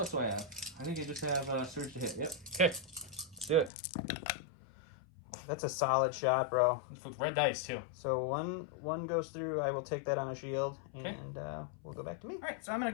do I have? I think I just have surge to hit. Yep. Okay. Let's do it. That's a solid shot, bro. With red dice, too. So one goes through. I will take that on a shield, okay. And we'll go back to me. All right, so I'm going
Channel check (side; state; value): right; drops out; at 3.7 s